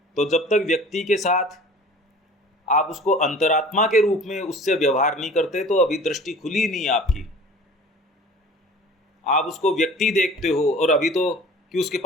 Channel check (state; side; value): normal; both; correlation 0.45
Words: तो जब तक व्यक्ति के साथ आप उसको अंतरात्मा के रूप में उससे व्यवहार नहीं करते तो अभी दृष्टि खुली नहीं आपकी। आप उसको व्यक्ति देखते हो और अभी तो कि उसके